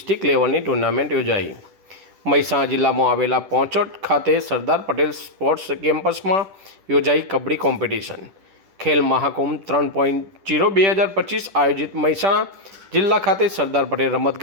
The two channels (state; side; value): late; left; 10 ms